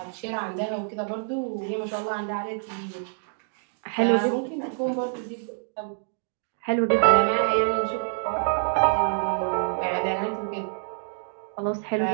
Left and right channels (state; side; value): silent; left; digital silence